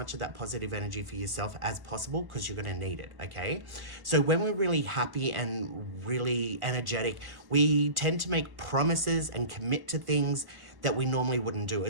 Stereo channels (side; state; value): left; late; 1.0 ms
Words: of that positive energy for yourself as possible because you're going to need it, okay? So when we're really happy and really energetic, we tend to make promises and commit to things that we normally wouldn't do.